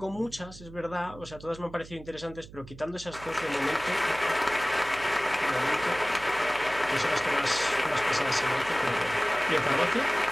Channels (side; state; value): right; noise; hum, 18 dB below the sound